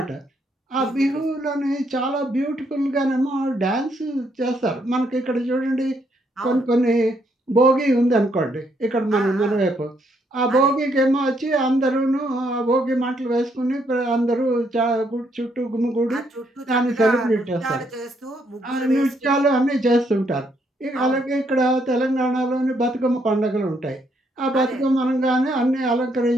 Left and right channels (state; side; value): normal; both; correlation 0.73